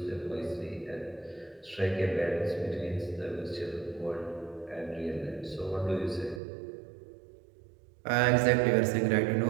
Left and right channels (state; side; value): drops out; left; at 6.4 s